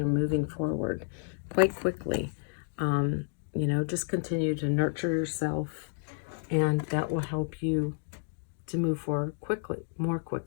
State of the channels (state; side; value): silent; right; digital silence